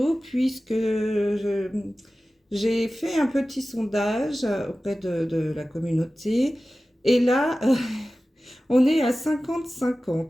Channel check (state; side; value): normal; both; correlation 0.96